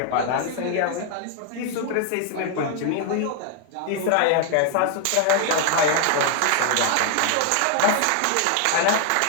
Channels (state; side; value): different; both; correlation 0.00